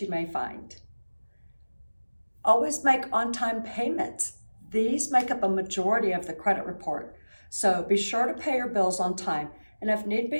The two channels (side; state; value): both; inverted; correlation -1.00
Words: you may find. Always make on-time payments. These make up a majority of the credit report, so be sure to pay your bills on time, and if need